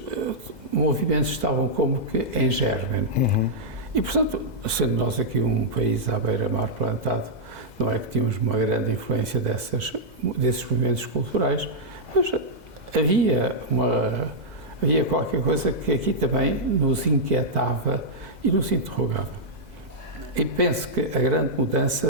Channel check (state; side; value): late; left; 2.0 ms